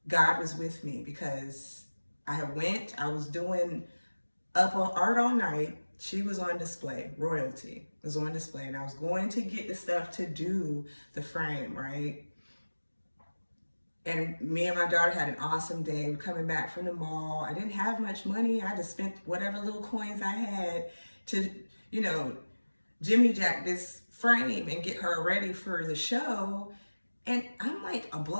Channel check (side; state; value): both; inverted; correlation -1.00